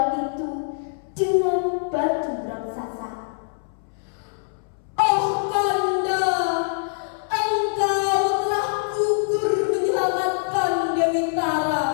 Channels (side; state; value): right; silent; 63 dB below the other